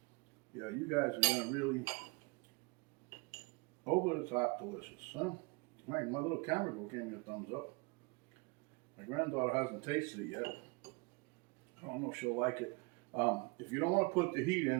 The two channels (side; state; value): left; quieter; 28.5 dB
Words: Yeah, you guys are gonna really over the top delicious, huh? My little camera girl gave me a thumbs up. My granddaughter hasn't tasted it yet. I don't know if she'll like it. If you don't want to put the heat